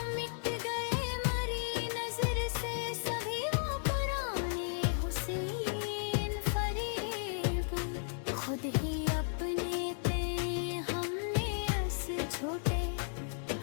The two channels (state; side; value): silent; right; digital silence